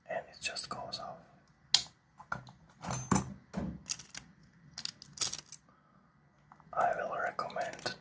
and it just goes off. I will recommend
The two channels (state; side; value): identical; both; correlation 1.00